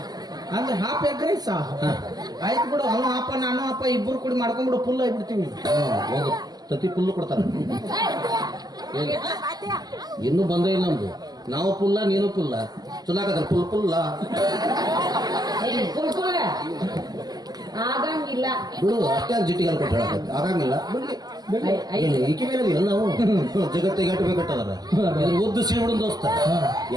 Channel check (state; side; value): late; left; 0.19 ms